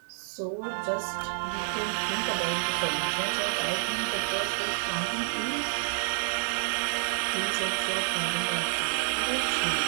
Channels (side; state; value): left; silent; 59 dB below the other